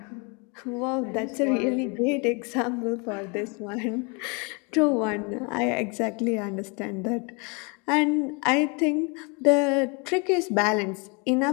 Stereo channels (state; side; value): quieter; right; 31.8 dB